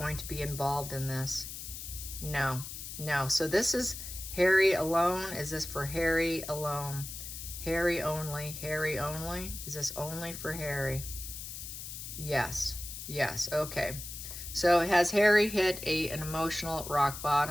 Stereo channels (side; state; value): left; noise; hiss, 9 dB below the sound